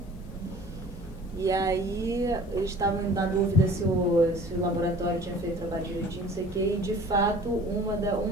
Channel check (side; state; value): both; normal; correlation 0.47